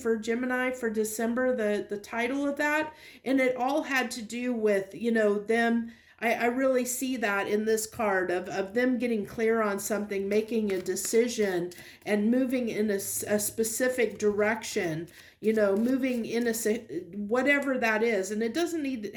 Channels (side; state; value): both; identical; correlation 1.00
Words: Gemini for December, the title of that. And it all had to do with, them. I really see that in this card of them getting clear on something, making a decision, and moving in a specific direction, moving in whatever that is. And it